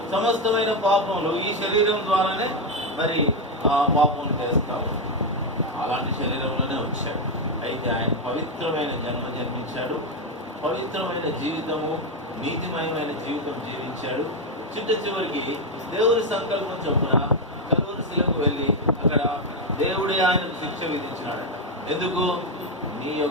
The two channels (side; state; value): both; normal; correlation 0.06